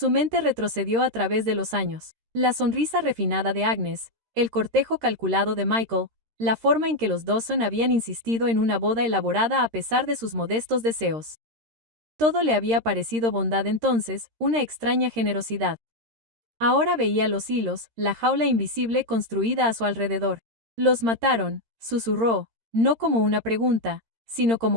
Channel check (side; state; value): left; late; 13 ms